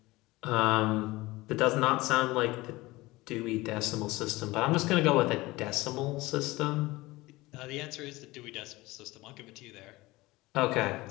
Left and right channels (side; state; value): right; quieter; 20.3 dB